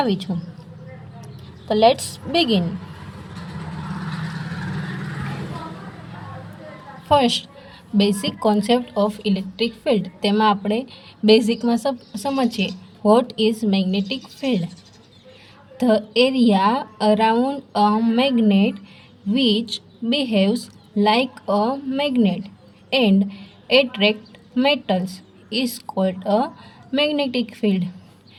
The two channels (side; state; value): both; identical; correlation 1.00